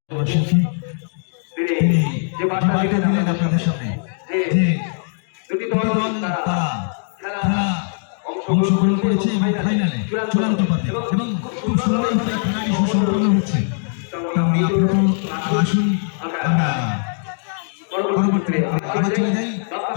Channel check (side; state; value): right; silent; digital silence